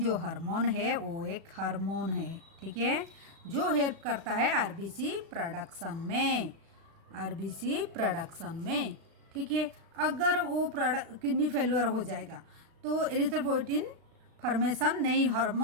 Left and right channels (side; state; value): left; late; 36 ms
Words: हार्मोन है वो एक हार्मोन है। ठीक है, जो हेल्प करता है RBC प्रोडक्शन में। ठीक है, अगर वो किडनी फेल्योर हो जाएगा तो एरिथ्रोपोइटिन फॉर्मेशन नहीं,